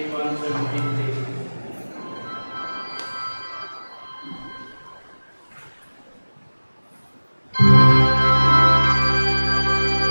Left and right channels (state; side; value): inverted; both; correlation -1.00